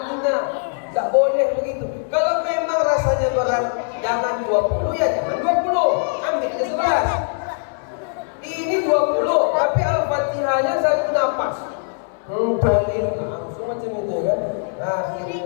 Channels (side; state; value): right; silent; digital silence